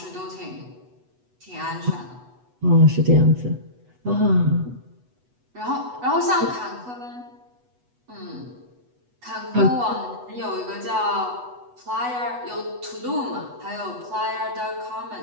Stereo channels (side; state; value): left; late; 8.1 ms